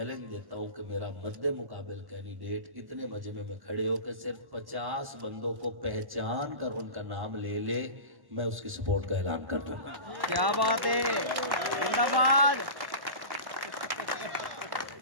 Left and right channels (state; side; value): late; left; 1.1 ms